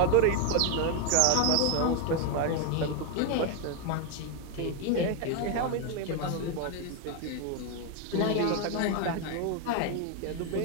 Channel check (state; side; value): different; both; correlation 0.01